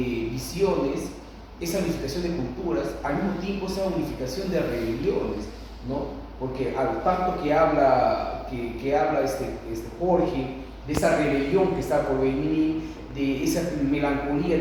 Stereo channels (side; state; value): both; identical; correlation 1.00